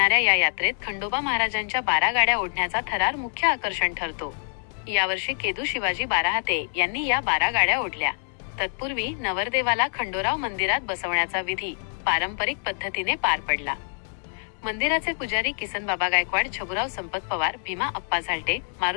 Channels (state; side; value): silent; right; digital silence